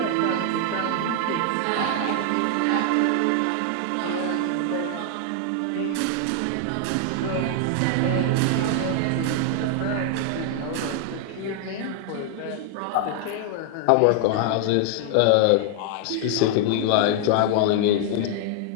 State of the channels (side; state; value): both; different; correlation 0.00